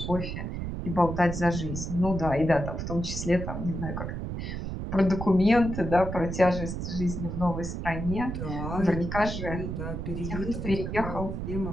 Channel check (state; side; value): noise; right; rumble, 5 dB below the sound